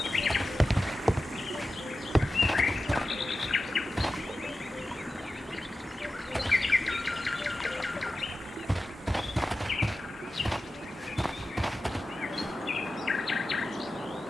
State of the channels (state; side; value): normal; both; correlation 0.93